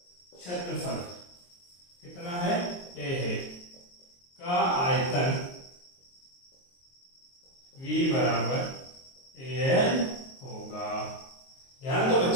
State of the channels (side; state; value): right; late; 23 ms